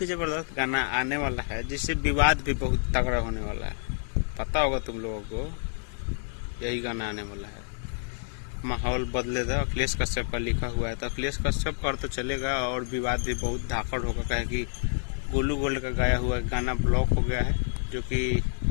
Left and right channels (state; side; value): silent; right; 59 dB below the other